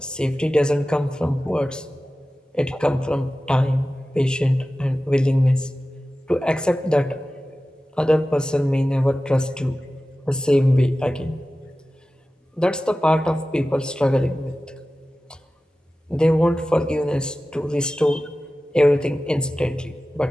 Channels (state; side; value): normal; both; correlation 0.95